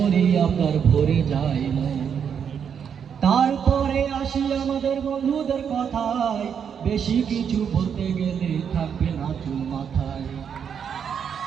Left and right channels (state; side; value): quieter; left; 7.5 dB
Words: আপনার ভরে যায় মন। তারপরে আসি আমাদের বন্ধুদের কথায়, বেশি কিছু বলতে গেলে থাকবে না চুল মাথায়।